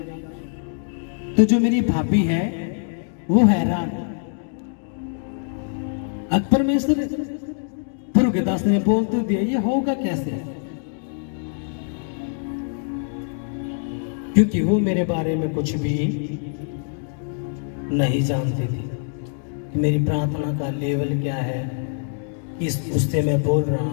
तो जो मेरी भाभी है वो हैरान। अब परमेश्वर गुरु के दास ने बोल तो दिया, ये होगा कैसे? क्योंकि वो मेरे बारे में कुछ भी नहीं जानती थी कि मेरी प्रार्थना का लेवल क्या है, किस उससे मैं बोल रहा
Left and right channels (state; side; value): silent; right; 63 dB below the other